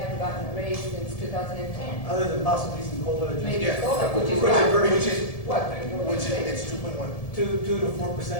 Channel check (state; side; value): late; right; 1.7 ms